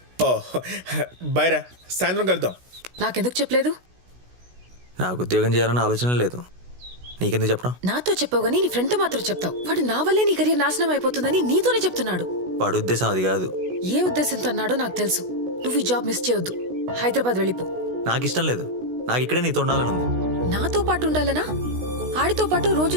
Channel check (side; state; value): left; late; 16 ms